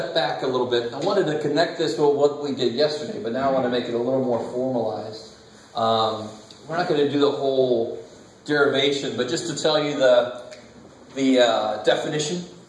back a little bit. I wanted to connect this with what we did yesterday, but now I want to make it a little more formalized. We're not going to do the whole derivation, but just to tell you the definition.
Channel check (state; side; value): identical; both; correlation 1.00